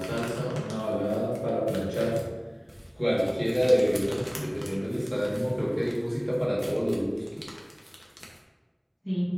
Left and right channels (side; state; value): both; identical; correlation 1.00